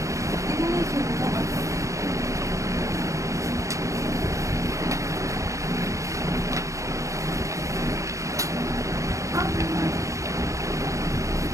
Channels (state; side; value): late; left; 0.15 ms